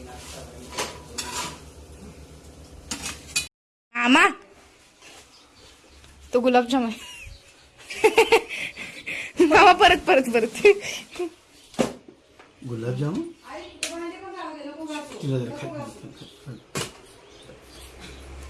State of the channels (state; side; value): identical; both; correlation 1.00